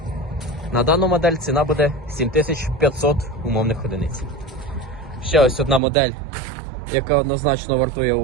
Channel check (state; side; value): drops out; left; at 5.8 s